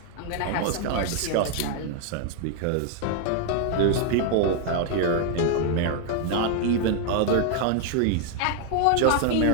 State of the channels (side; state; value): both; different; correlation 0.00